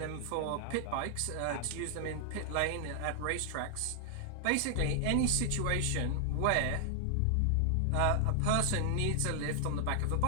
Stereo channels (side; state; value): both; different; correlation 0.00